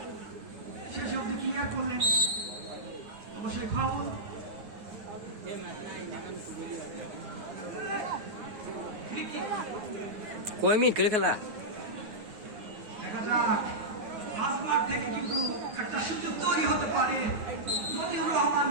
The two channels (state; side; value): late; left; 9.4 ms